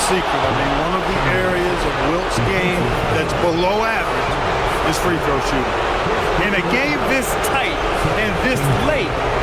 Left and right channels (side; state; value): both; identical; correlation 1.00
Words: secret. I mean, one of the areas of Wilt's game that's below average is free throw shooting. In a game this tight and this late,